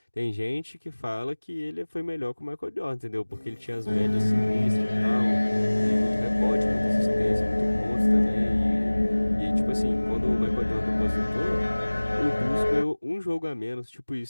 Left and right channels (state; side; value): inverted; both; correlation -1.00